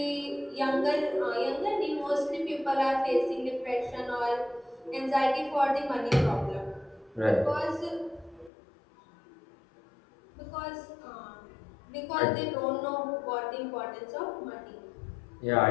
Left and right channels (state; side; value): drops out; right; at 8.5 s